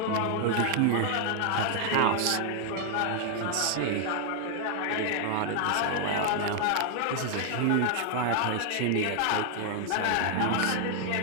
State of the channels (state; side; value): different; both; correlation 0.00